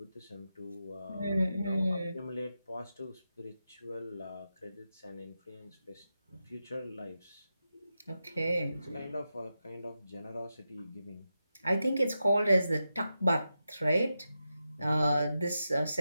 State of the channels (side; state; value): both; inverted; correlation -0.89